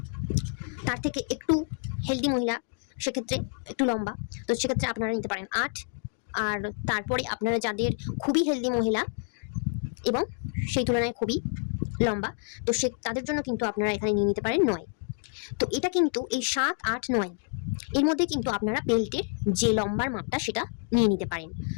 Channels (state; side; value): silent; right; 59 dB below the other